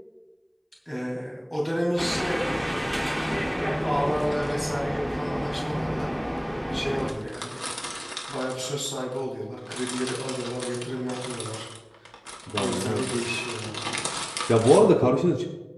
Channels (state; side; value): identical; both; correlation 1.00